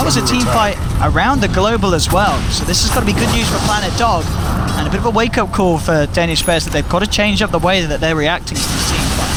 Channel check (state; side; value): identical; both; correlation 1.00